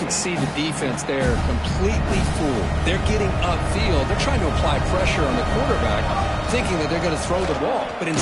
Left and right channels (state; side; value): identical; both; correlation 1.00